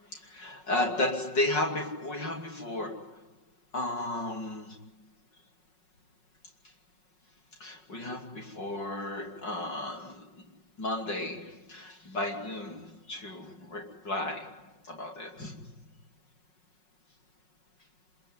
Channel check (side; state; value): right; late; 5.5 ms